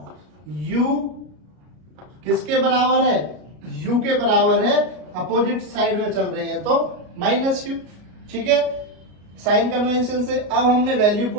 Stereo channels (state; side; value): late; left; 33 ms